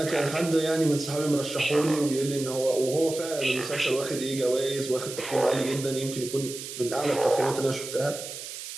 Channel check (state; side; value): noise; right; hiss, 10 dB below the sound